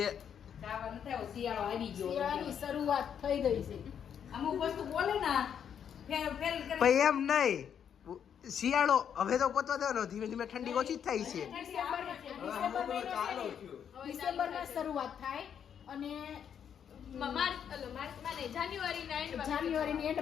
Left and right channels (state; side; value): quieter; right; 8.3 dB